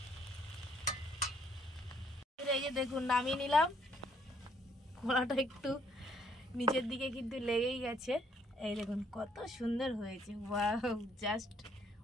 এই যে দেখুন নামিয়ে নিলাম। কড়াটা একটু নিচের দিকে কিন্তু লেগেই গেছে। এই দেখুন কত সুন্দর হয়েছে, ওয়াও জাস্ট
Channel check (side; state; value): both; normal; correlation 0.67